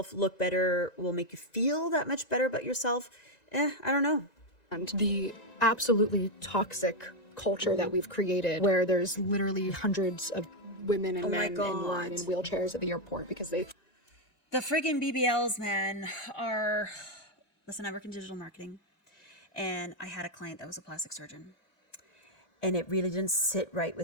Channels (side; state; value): right; late; 1.9 ms